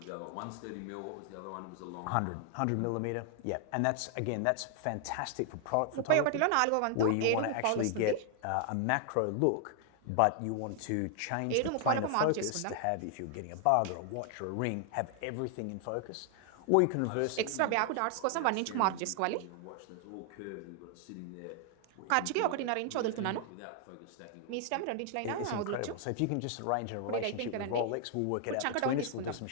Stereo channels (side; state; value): both; different; correlation 0.00